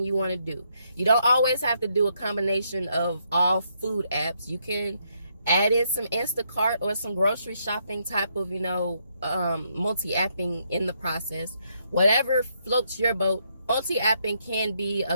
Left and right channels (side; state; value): both; inverted; correlation -0.75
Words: you want to do. You don't always have to do a combination of all food apps. You can add in some Instacart or some grocery shopping type of, multi-apping in the process. Whatever floats your boat. Multi-apping can be